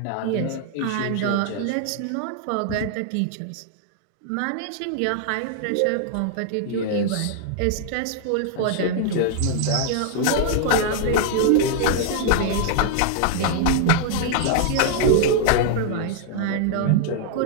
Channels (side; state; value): both; different; correlation -0.01